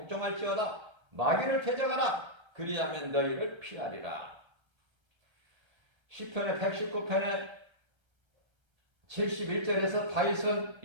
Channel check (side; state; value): left; late; 1.3 ms